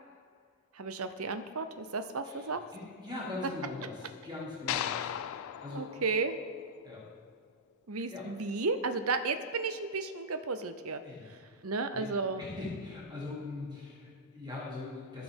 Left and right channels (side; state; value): both; normal; correlation -0.11